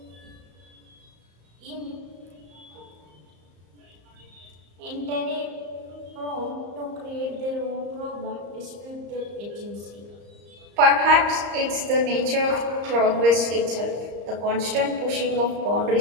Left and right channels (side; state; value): left; late; 34 ms